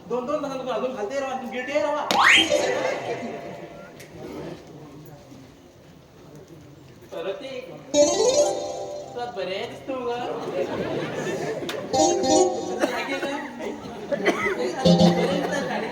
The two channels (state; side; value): identical; both; correlation 1.00